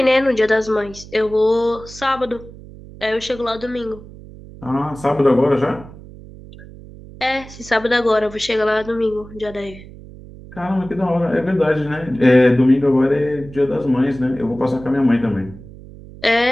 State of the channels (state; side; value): noise; right; hum, 18 dB below the sound